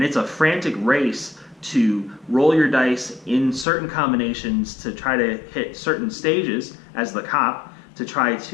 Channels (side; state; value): right; drops out; at 3.7 s